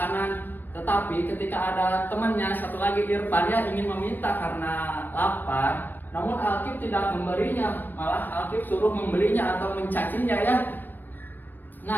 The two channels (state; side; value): late; right; 0.089 ms